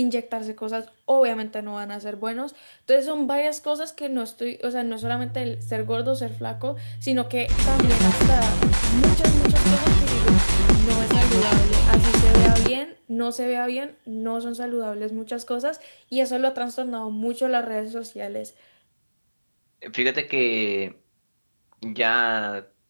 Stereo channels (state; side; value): inverted; both; correlation -1.00